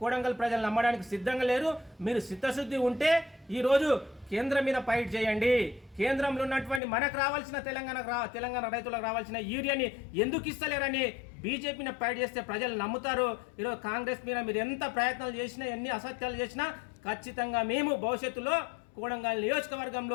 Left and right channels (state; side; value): drops out; right; at 6.8 s